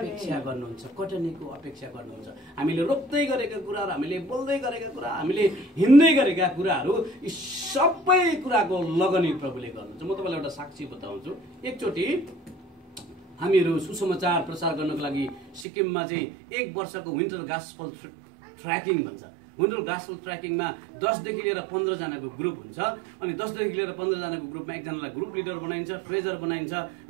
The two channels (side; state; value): left; drops out; at 15.7 s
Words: गर्नुहुन्छ। कटनीको अपेक्षा गर्नुहुन्छ। हामीले रोप्दै गरेका कुराहरू, हामीले बोल्दै गरेका कुरा, हामीले हिँड्दै गरेका कुराहरू यी सबै कुराको लगनी प्रभुले गर्नुहुन्छ। म तपाईँलाई एउटा साक्षी बताउँछु। एकचोटि हामीहरू सुसमाचार प्रचार गर्नको लागि सिक्किममा चाहिँ 1 वर्षको विन्टर गास्पल ट्र्याकिङ भन्छ। विन्टर गास्पल ट्र्याकिङमा 10 देखि लिएर 15 जनाको ग्रुप हुन्छ। अनि 10 देखि लिएर 15 जनाको ग्रुपमा एकजनालाई ग्रुप लिडर बनाइन्छ, ट्रेजर बनाइन्छ,